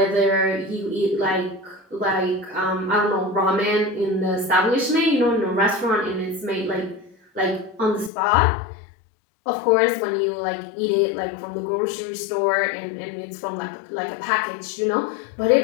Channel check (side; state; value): right; drops out; at 8.1 s